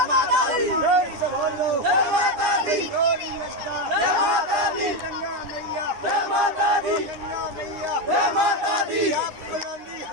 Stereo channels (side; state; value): left; late; 9.7 ms